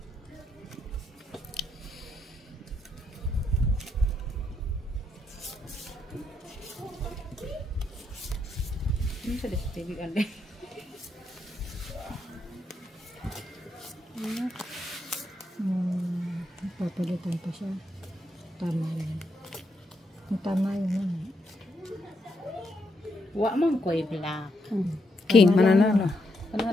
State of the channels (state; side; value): normal; both; correlation 0.79